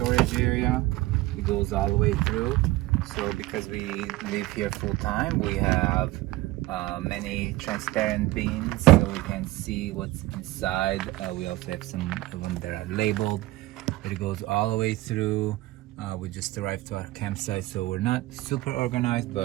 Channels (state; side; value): quieter; left; 18.3 dB